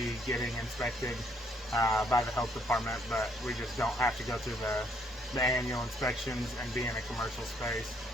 getting inspected by the health department, but we just don't have to go through the annual inspections and be in a commercial space.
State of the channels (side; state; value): both; normal; correlation 0.68